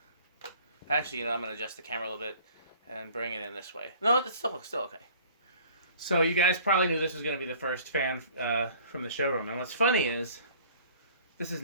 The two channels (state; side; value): inverted; both; correlation -0.51